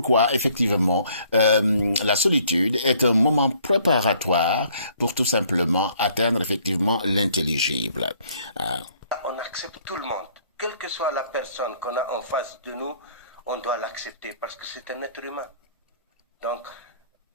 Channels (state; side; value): inverted; both; correlation -0.62